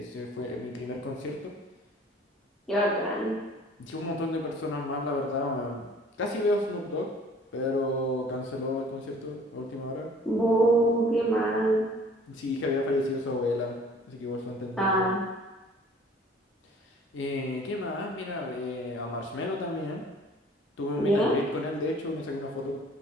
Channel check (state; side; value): normal; both; correlation 0.51